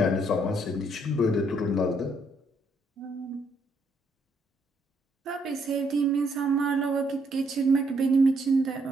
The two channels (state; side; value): normal; both; correlation 0.72